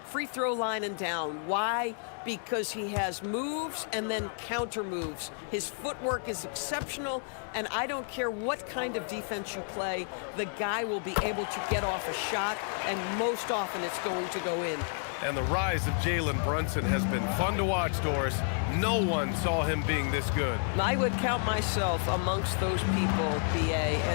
free throw line and down. Why? Because he has moves and then counter moves. His footwork is exceptional, and I don't care what kind of defense you play, the guy will be able to get off a shot, and most often it's going to go in. And the rise of Jalen Brunson has been fun to watch, Doris. No one saw him being this good. I would count myself amongst those people, BA,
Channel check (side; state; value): right; silent; 57 dB below the other